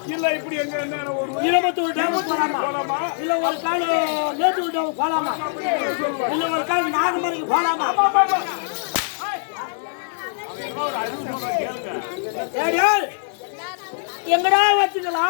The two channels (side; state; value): right; silent; 62 dB below the other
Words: இல்ல இப்படி எங்க என்ன ஒரு இருபத்தூர் டேம் போலாமா? இல்ல ஒரு கால் மேட்டூர் டேம் போலாமா? இல்ல ஒரு கால் நாகமருக்கு போலாமா? எங்கடா